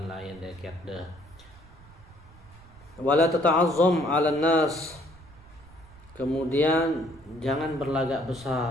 lain deket deh. Wala tata'azzam 'alan nas, kemudian jangan berlagak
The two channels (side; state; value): right; noise; rumble, 22 dB below the sound